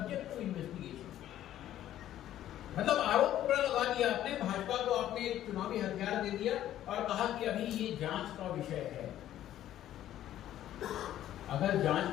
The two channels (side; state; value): right; quieter; 12.3 dB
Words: टू इन्वेस्टिगेशन। मतलब आरोप पूरा लगा दिया आपने, भाजपा को आपने एक चुनावी हथियार दे दिया और कहा कि अभी ये जांच का विषय है। अगर जांच